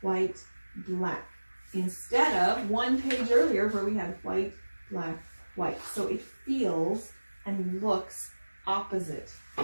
white, black, instead of one page earlier where we had white, black, white. So it feels and looks opposite.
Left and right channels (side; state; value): both; inverted; correlation -1.00